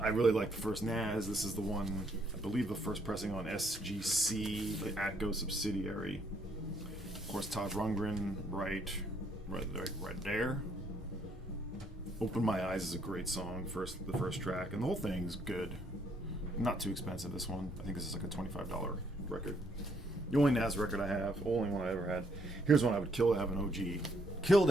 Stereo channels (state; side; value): normal; both; correlation 0.69